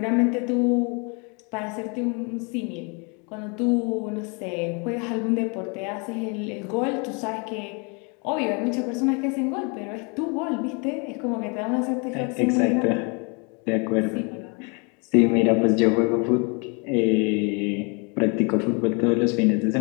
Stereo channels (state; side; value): quieter; right; 33.6 dB